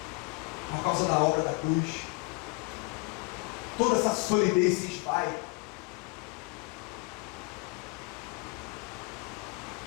por causa da obra da cruz. Toda essa solidez se esvai.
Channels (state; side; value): quieter; right; 29.4 dB